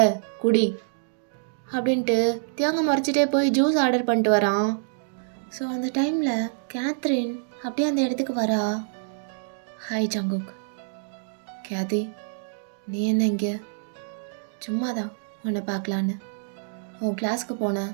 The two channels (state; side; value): silent; left; digital silence